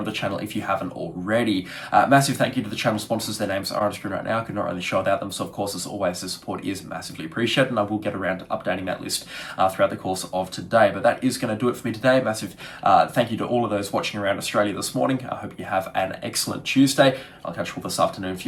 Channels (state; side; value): identical; both; correlation 1.00